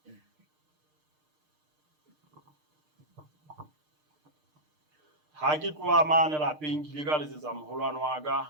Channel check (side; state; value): left; late; 6.6 ms